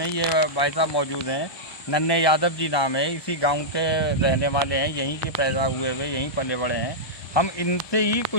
ये भाई साहब मौजूद हैं, नन्हे यादव जी नाम है, इसी गांव के रहने वाले हैं, यहीं के पैदा हुए हुए, यहीं पले बड़े हैं। हम इनसे ही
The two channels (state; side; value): late; right; 1.2 ms